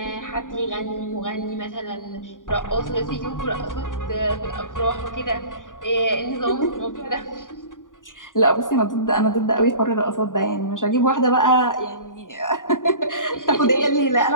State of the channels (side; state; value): right; late; 0.88 ms